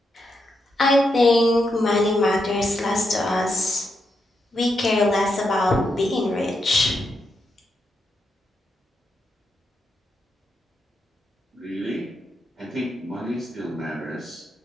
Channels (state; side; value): normal; both; correlation 0.83